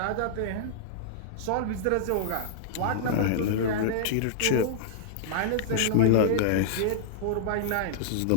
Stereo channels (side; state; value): both; different; correlation -0.02